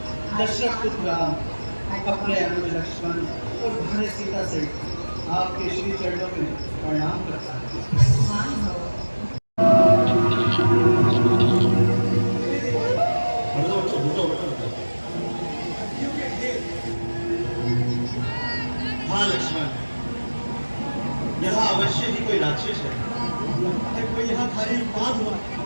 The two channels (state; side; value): inverted; both; correlation -1.00